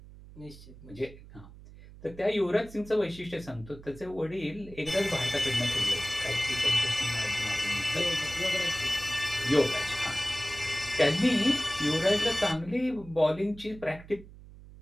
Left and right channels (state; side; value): noise; right; hum, 19 dB below the sound